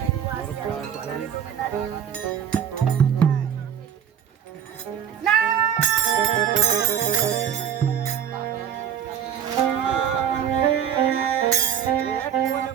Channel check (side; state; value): left; quieter; 8.9 dB